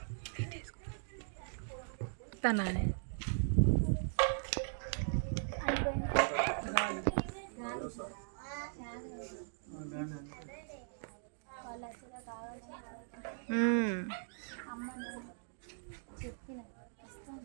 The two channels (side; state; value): left; silent; digital silence